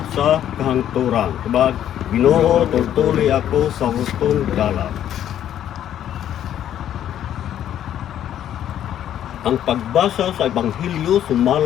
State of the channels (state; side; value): quieter; right; 10.8 dB